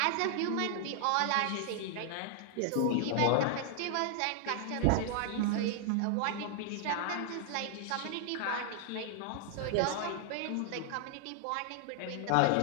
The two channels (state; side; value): different; both; correlation 0.00